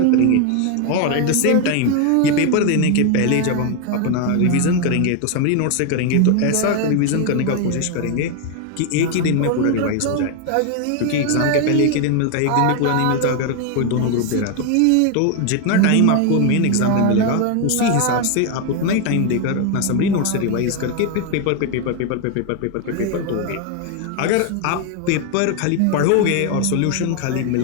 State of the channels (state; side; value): different; both; correlation 0.01